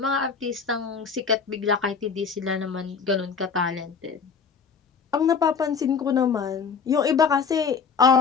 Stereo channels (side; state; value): right; quieter; 5.8 dB